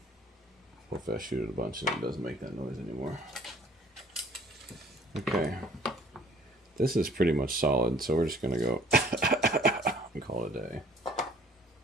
Hopefully I shoot it a bunch and it doesn't make that noise anymore. Okay. This is pretty much solid, so we're just gonna go and call it a day.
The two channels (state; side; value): normal; both; correlation 0.55